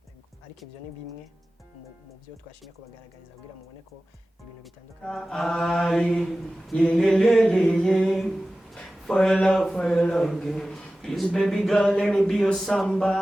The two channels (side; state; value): both; normal; correlation 0.96